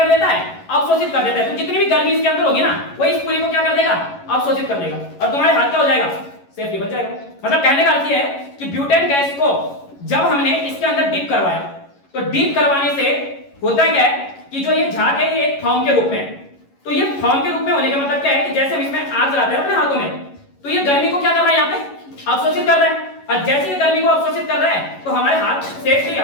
देता है? अवशोषित कर देता है। तो जितनी भी गर्मी इसके अंदर होगी ना, वो इस पूरी को क्या कर देगा? अवशोषित कर देगा और तुम्हारे हाथ क्या हो जाएगा? सेफली बच जाएगा। मतलब कहने का अर्थ ये है कि ब्यूटेन गैस को जब हमने इसके अंदर डीप करवाया तो डीप करवाने से होता क्या है कि जो ये झाग है ये एक फॉर्म के रूप में है। तो ये फॉर्म के रूप में होने का मतलब क्या है कि जैसे हम इसमें आग जलाते हैं अपने हाथों में, तो ये गर्मी को क्या कर रहा है? यहाँ पे अवशोषित कर रहा है। और जैसे ये गर्मी को अवशोषित कर रहा है तो हमारे हाथ सेफली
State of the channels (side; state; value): right; late; 11 ms